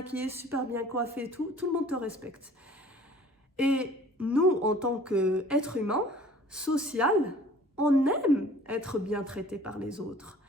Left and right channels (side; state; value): both; normal; correlation 0.50